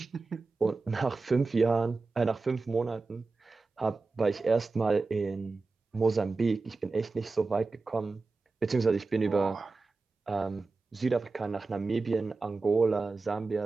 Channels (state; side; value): quieter; left; 3.9 dB